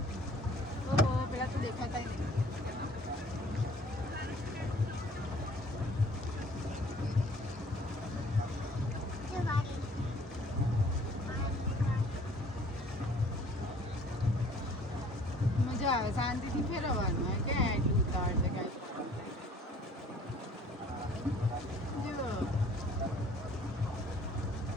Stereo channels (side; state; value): both; normal; correlation 0.54